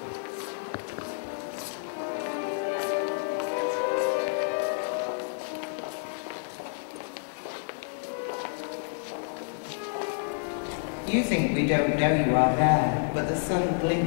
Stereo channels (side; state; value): right; silent; 58 dB below the other